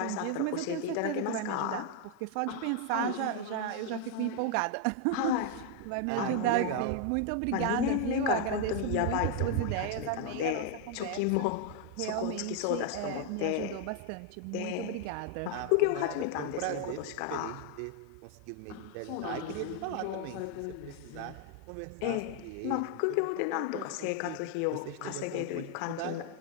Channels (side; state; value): both; different; correlation 0.00